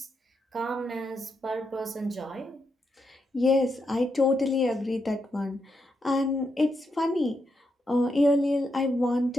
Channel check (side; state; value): both; normal; correlation 0.82